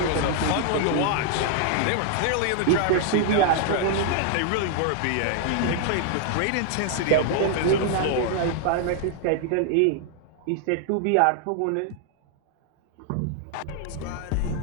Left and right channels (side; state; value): both; different; correlation 0.00